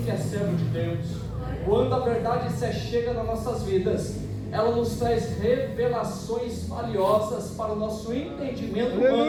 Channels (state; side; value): identical; both; correlation 1.00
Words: que é servo de Deus. Quando a verdade se chega nas nossas vidas, ela nos traz revelações valiosas para o nosso entendimento